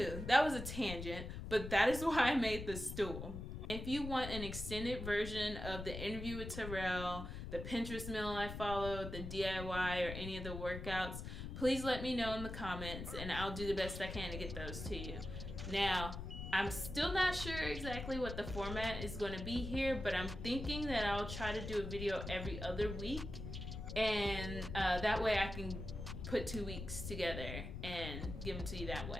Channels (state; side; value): noise; left; rumble, 7 dB below the sound